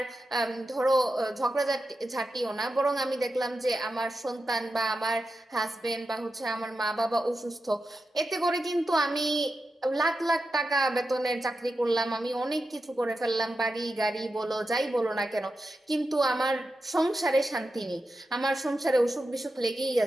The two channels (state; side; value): normal; both; correlation 0.90